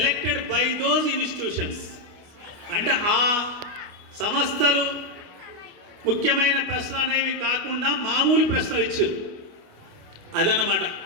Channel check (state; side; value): late; left; 29 ms